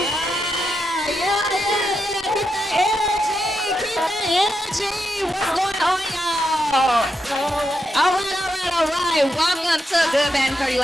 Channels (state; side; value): normal; both; correlation 0.84